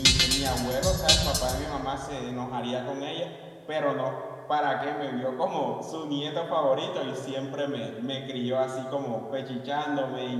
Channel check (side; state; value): both; identical; correlation 1.00